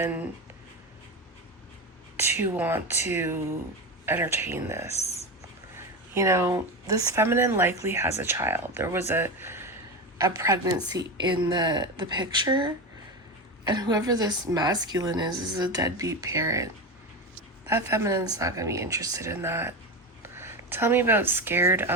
to want to entertain this. You know, this feminine likely has a child. There was a pregnancy in the picture, and whoever this masculine is a deadbeat parent. That feminine's not going to be interested in that. Tell me about scared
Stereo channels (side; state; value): both; normal; correlation 0.19